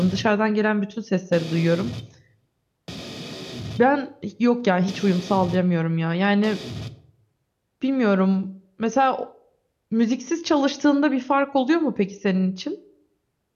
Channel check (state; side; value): identical; both; correlation 1.00